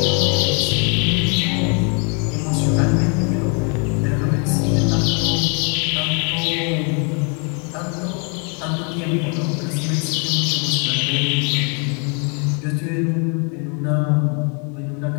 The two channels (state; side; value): quieter; right; 37.0 dB